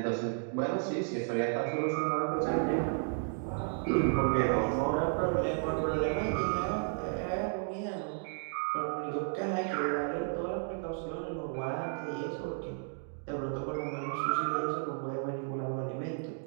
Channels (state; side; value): silent; left; 56 dB below the other